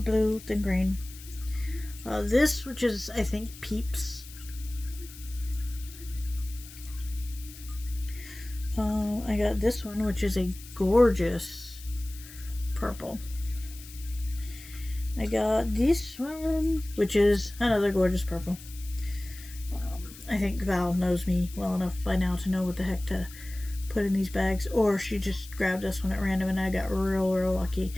than green. This, which is, I think, Peeps. I got this one, which is a gorgeous purple. I got this one, which is another gorgeous purple. I think Val knows me well enough by now to know what the heck to put in these bags, or she just grabbed this one at random and I got real lucky.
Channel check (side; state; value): left; noise; hiss, 17 dB below the sound